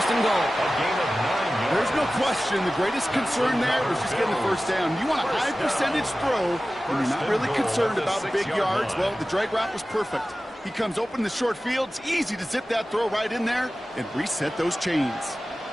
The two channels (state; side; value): normal; both; correlation 0.96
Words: and goal. There's no question the greatest concern there was just getting the 1st down. You want a high percentage throw when you're not really concerned about big yards. Well, the drag route was perfect. He comes open in the short field. It's easy to zip that throw right in there and reset those chains.